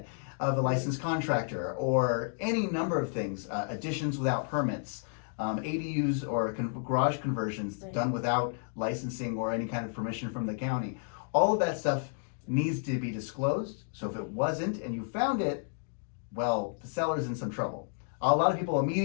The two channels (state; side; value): silent; right; 57 dB below the other